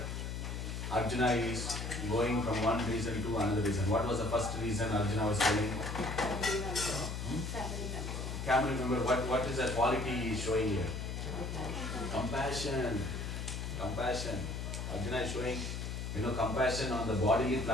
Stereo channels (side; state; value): left; noise; hum, 4 dB below the sound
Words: Arjuna is going from one reason to another reason. What was the first reason Arjuna was telling? Can you remember what is the quality he is showing here? Compassion. Compassion. Arjuna is showing compassion on the bodily